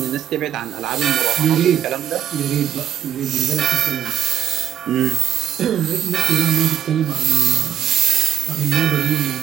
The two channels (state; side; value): quieter; left; 10.4 dB